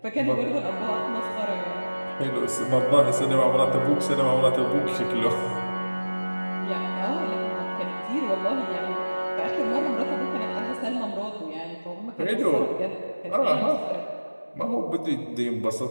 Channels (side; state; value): both; inverted; correlation -1.00